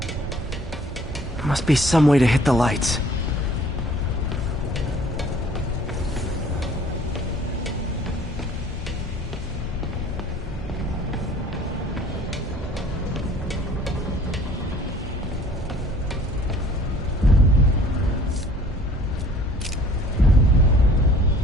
Must be some way to hit the lights.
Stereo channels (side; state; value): both; normal; correlation 0.53